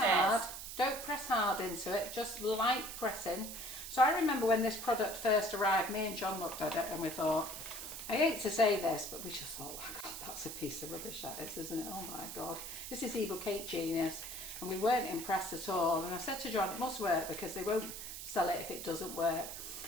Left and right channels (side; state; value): right; noise; hiss, 8 dB below the sound